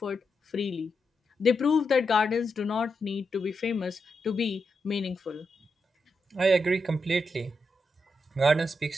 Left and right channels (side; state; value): both; normal; correlation 0.85